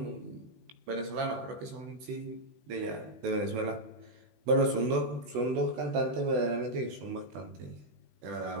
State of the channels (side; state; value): left; late; 16 ms